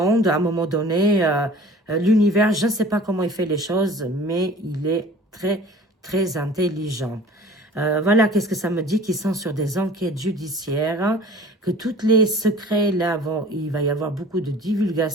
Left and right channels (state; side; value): normal; both; correlation 0.45